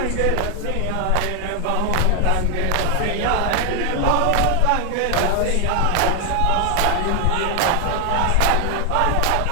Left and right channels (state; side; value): different; both; correlation 0.00